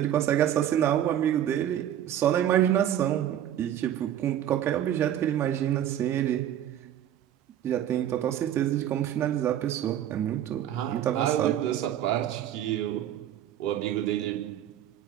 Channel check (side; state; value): left; quieter; 11.0 dB